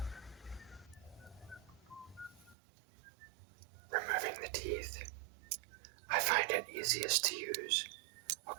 Removing the teeth. I find it easiest to use a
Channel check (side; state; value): left; drops out; at 2.6 s